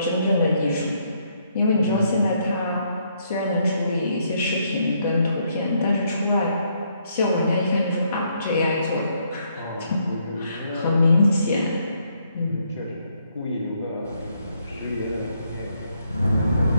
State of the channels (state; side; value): inverted; both; correlation -0.73